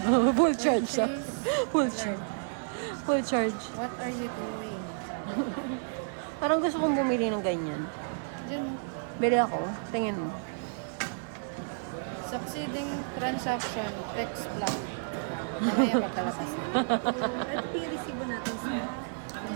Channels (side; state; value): left; silent; digital silence